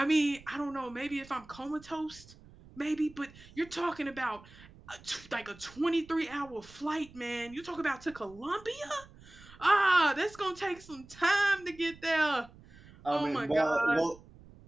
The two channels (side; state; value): right; noise; rumble, 22 dB below the sound